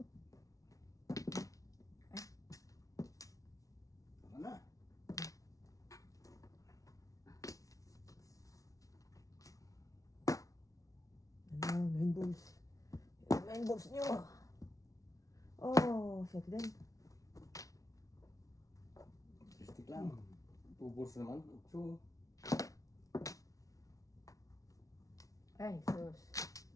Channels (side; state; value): right; late; 0.17 ms